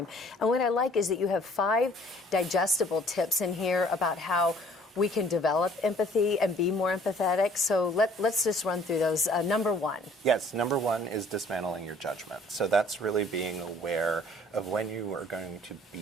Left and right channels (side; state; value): both; normal; correlation 0.56